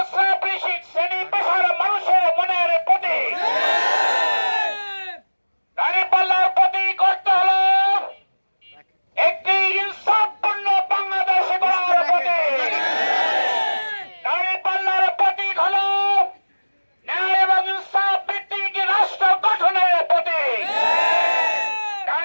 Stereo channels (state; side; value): inverted; both; correlation -1.00